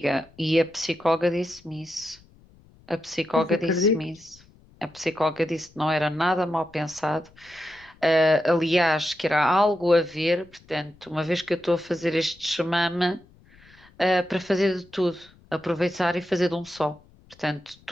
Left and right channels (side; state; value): left; noise; rumble, 27 dB below the sound